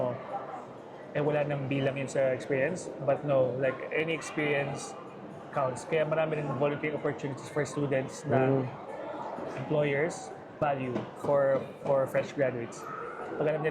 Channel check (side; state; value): both; identical; correlation 1.00